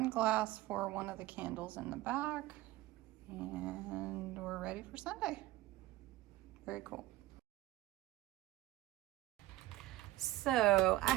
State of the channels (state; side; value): quieter; left; 16.5 dB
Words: glass for one of the candles in the back, and we're ready for Sunday. Very cool. So I